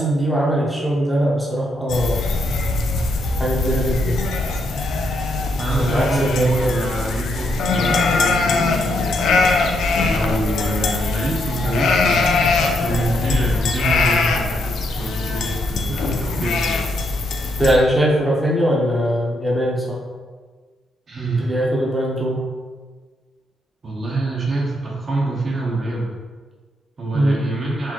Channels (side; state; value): both; normal; correlation 0.77